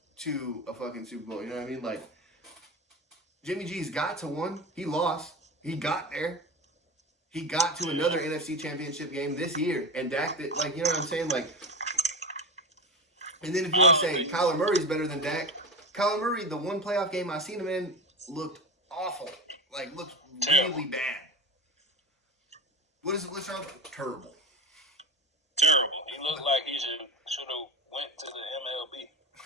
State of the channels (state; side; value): normal; both; correlation 0.25